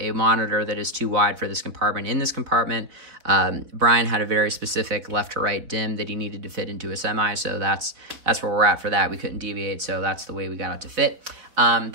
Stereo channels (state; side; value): late; left; 4.4 ms